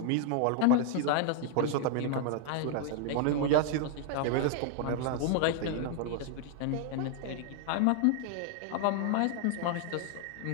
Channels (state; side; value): different; both; correlation 0.00